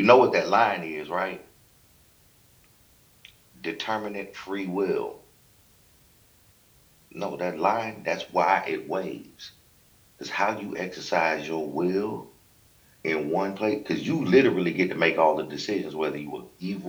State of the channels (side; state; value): both; identical; correlation 1.00